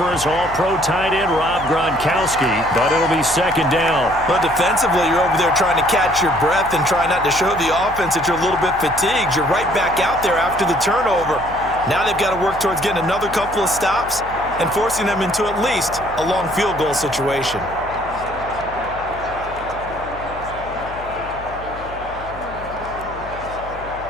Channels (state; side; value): noise; left; hum, 15 dB below the sound